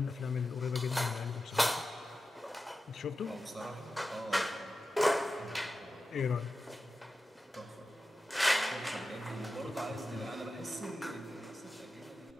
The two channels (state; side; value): normal; both; correlation 0.92